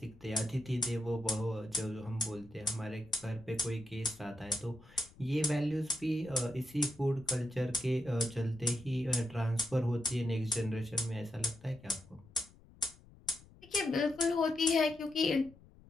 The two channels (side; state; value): left; noise; rumble, 24 dB below the sound